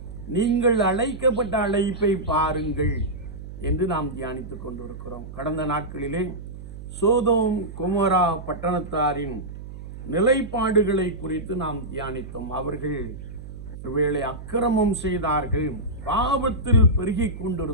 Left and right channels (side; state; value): right; noise; hum, 12 dB below the sound